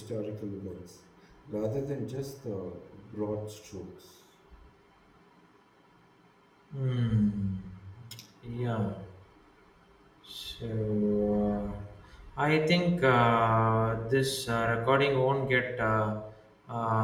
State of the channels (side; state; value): both; identical; correlation 1.00